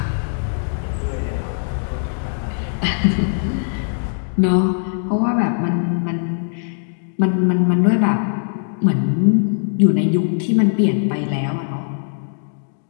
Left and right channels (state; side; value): silent; right; digital silence